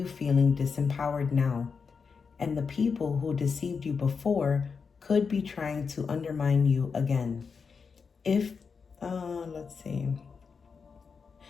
feeling disempowered now, and the people who deceived you before could be trying to undermine you again. Let's see.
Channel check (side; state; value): right; quieter; 5.5 dB